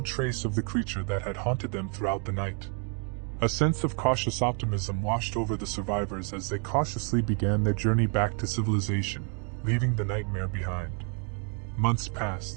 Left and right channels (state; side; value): quieter; left; 39.4 dB